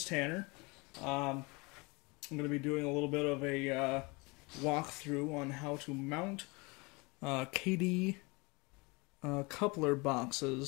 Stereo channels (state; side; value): quieter; right; 27.1 dB